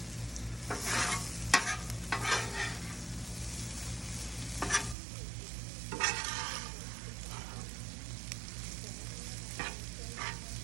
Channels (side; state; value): left; drops out; at 5.0 s